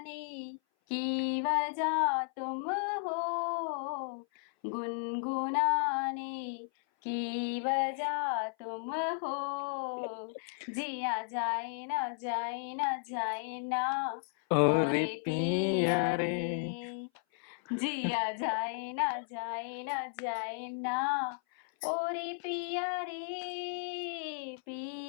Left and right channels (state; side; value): silent; right; 55 dB below the other